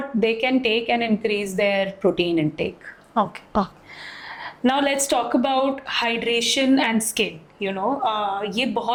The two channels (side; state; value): both; identical; correlation 1.00